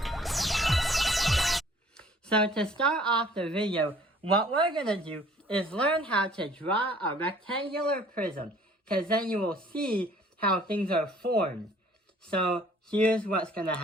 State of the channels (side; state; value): both; normal; correlation 0.55